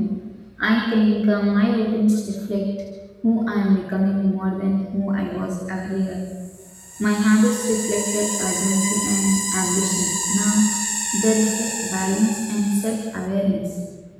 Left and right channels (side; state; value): both; identical; correlation 1.00